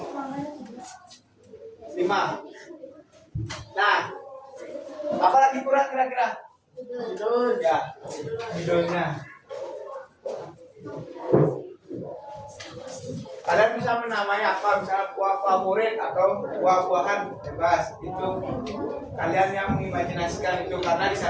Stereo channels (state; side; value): identical; both; correlation 1.00